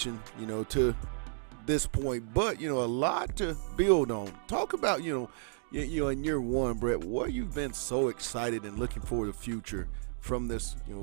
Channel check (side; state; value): left; silent; digital silence